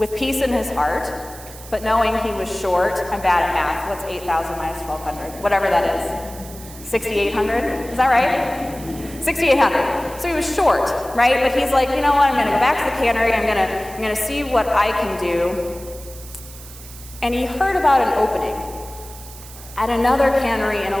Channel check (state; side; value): noise; right; hiss, 17 dB below the sound